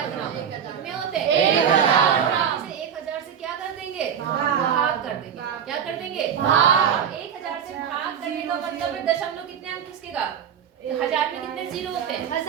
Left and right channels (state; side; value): quieter; left; 8.2 dB